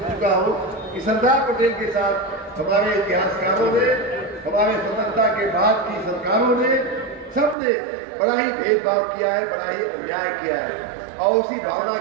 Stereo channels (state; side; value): drops out; left; at 7.6 s